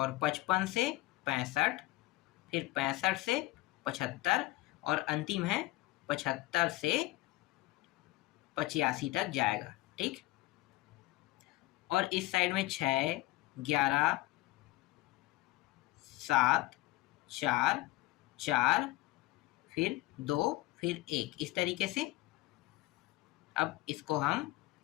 55 से 65, फिर 65 से 75, और अंतिम है 75 से 85 तक जाएगा। ठीक, और इस साइड में 6, 11, 7, 4, 4, फिर 2, फिर 1, इस तरीके से अब इसको हम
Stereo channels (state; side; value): quieter; right; 18.8 dB